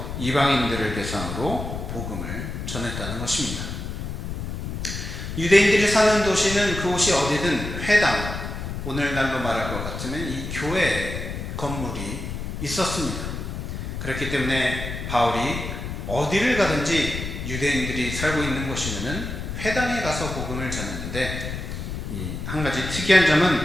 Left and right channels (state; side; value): noise; left; rumble, 6 dB below the sound